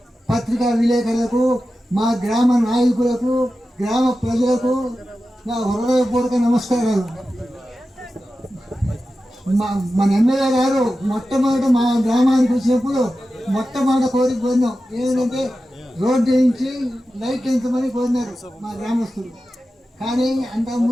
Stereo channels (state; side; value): normal; both; correlation 0.93